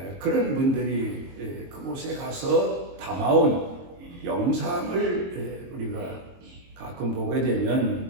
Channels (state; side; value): late; left; 22 ms